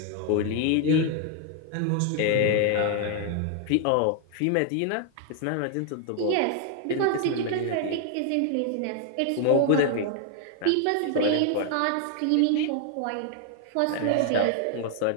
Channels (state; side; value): different; both; correlation 0.00